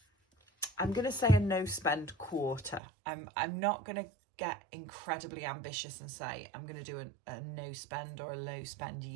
I'm going to say, a no spend quarter. I'm not going to get incredibly ambitious and say I'm going to do a no spend or a low spend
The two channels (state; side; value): drops out; left; at 2.8 s